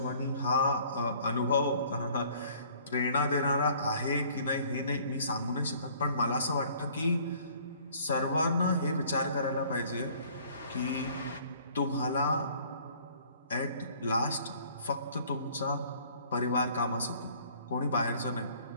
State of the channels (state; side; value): inverted; both; correlation -0.55